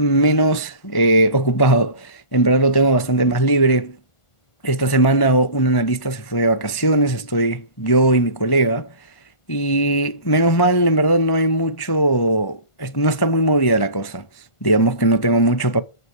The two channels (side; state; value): right; late; 1.1 ms